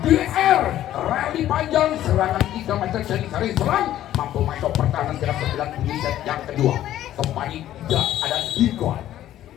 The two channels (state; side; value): quieter; right; 12.7 dB